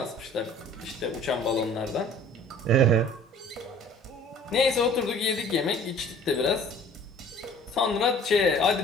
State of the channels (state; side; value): normal; both; correlation 0.50